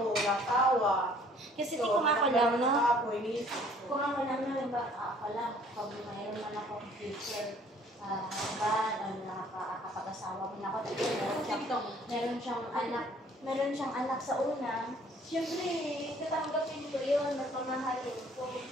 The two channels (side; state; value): both; normal; correlation 0.57